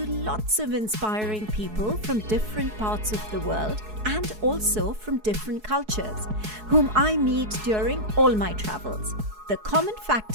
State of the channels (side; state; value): left; late; 4.7 ms